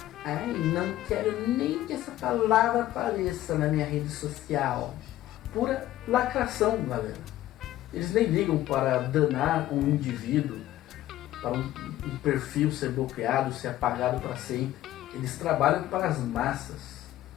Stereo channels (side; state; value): right; quieter; 14.4 dB